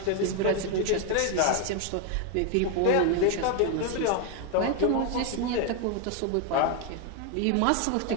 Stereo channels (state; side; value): different; both; correlation 0.01